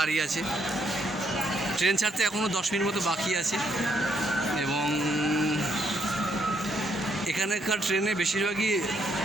আছে। ট্রেন ছাড়তে এখনও 10 মিনিট মতো বাকি আছে। এবং এখানকার ট্রেনে বেশিরভাগই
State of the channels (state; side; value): normal; both; correlation 0.74